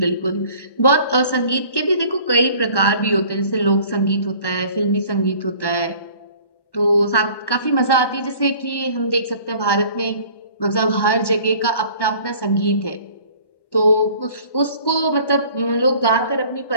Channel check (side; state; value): right; late; 1.1 ms